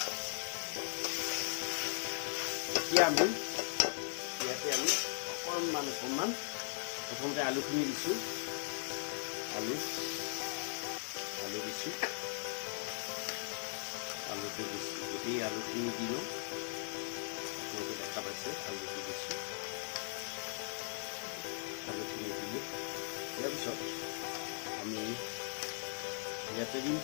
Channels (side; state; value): right; silent; 52 dB below the other